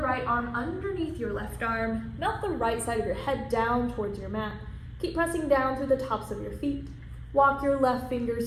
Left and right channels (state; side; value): identical; both; correlation 1.00